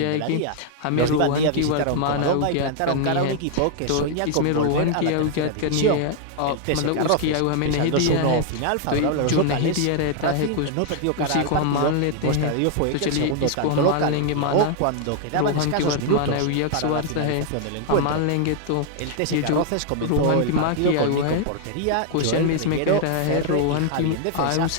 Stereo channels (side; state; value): both; different; correlation 0.00